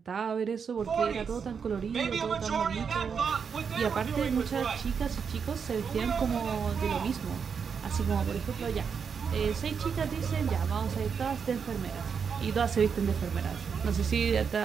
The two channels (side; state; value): left; quieter; 6.4 dB